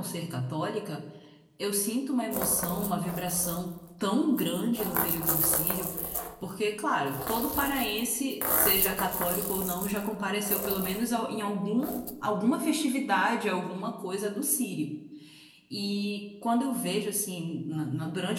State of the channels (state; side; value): identical; both; correlation 1.00